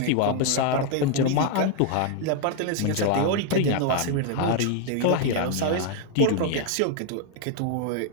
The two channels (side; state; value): both; different; correlation 0.00